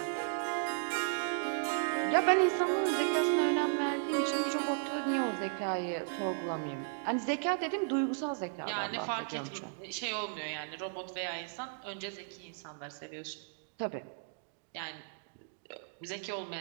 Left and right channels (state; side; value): silent; left; digital silence